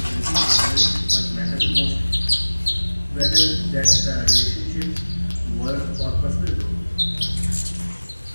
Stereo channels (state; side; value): inverted; both; correlation -1.00